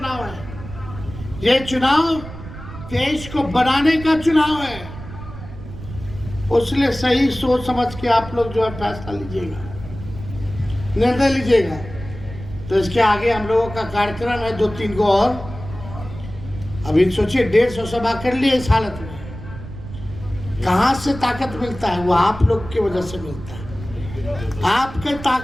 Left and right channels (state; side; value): noise; right; rumble, 13 dB below the sound